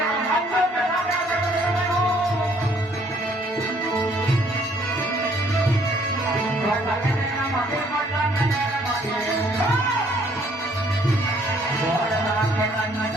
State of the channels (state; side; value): normal; both; correlation 0.63